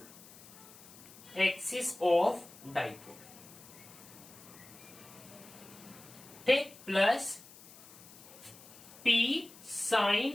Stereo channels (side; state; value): left; noise; hiss, 19 dB below the sound